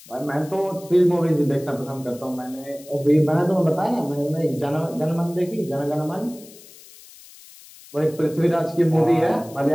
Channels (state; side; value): noise; left; hiss, 21 dB below the sound